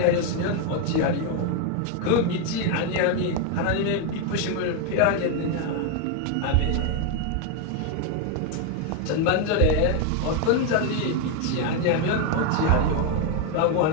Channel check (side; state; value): both; different; correlation 0.01